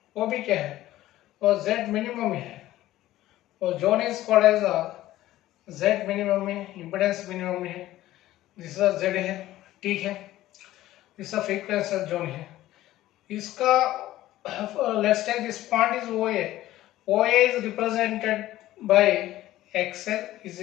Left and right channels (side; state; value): right; quieter; 15.1 dB